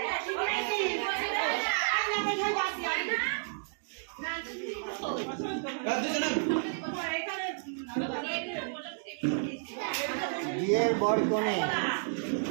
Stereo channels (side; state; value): left; silent; digital silence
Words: বিয়ের বর কোণে